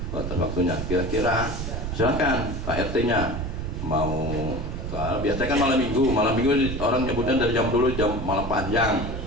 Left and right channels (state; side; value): noise; right; rumble, 5 dB below the sound